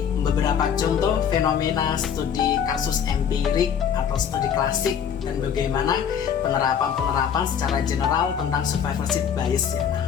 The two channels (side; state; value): right; quieter; 8.0 dB